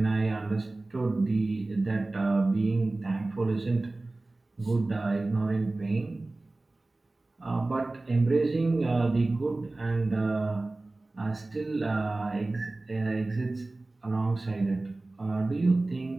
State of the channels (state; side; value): quieter; left; 3.0 dB